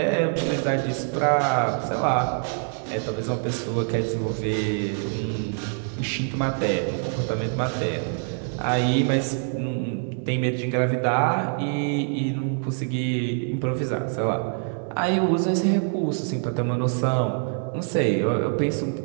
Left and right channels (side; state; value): left; silent; 55 dB below the other